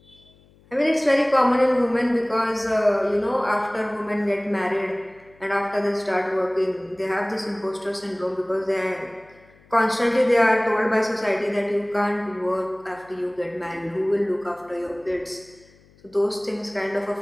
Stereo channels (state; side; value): noise; left; hum, 29 dB below the sound